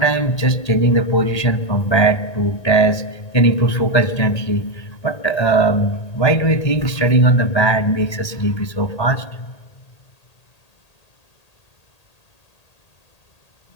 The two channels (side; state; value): right; late; 1.8 ms